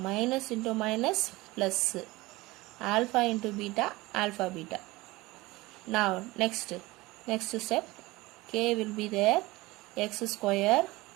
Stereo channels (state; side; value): quieter; left; 20.7 dB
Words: into minus, plus. Alpha into beta, alpha beta. Now next step, k will be there, x square.